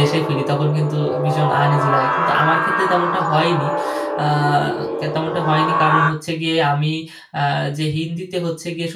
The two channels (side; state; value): both; identical; correlation 1.00